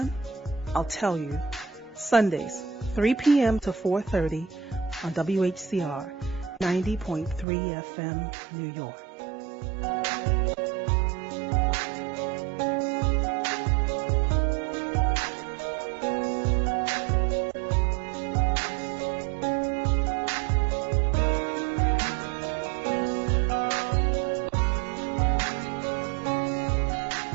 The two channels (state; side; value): drops out; left; at 7.5 s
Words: I'll tell you. Sundays, 3 p.m. to 4:30 on WHCR 90.3 FM, New York.